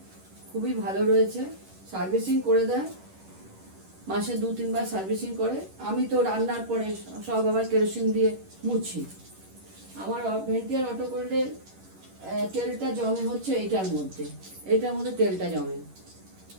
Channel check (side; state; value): left; late; 11 ms